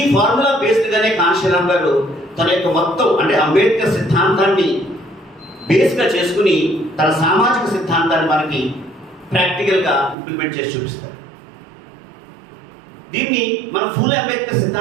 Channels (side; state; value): left; drops out; at 10.2 s